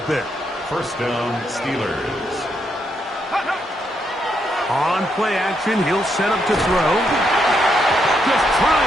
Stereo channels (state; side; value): normal; both; correlation 0.78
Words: bit. First down, Steelers. On play action, he'll set up to throw. Just